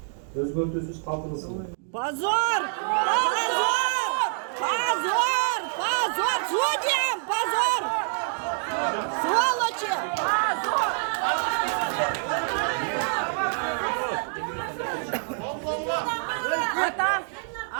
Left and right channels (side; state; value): left; silent; 61 dB below the other